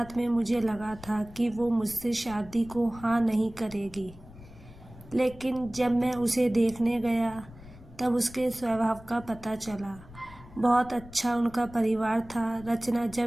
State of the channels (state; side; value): noise; left; rumble, 19 dB below the sound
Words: में मुझे लगा था कि वो मुझसे शादी को हाँ नहीं करेगी, लेकिन जब मैं उसे देखने गया तब उसके स्वभाव का पता चला। बहुत अच्छा उनका परिवार था। रचना